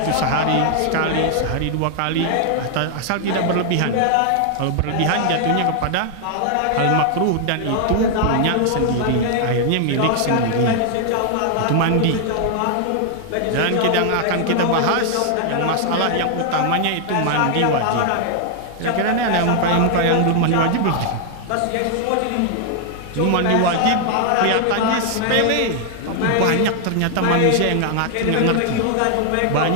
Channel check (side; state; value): both; different; correlation 0.00